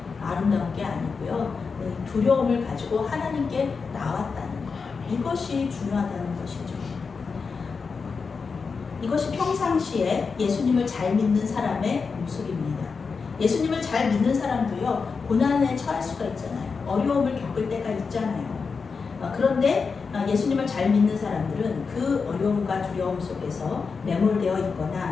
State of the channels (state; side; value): quieter; right; 5.1 dB